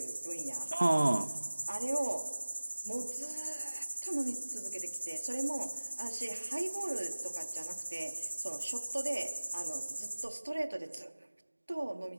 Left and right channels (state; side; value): inverted; both; correlation -1.00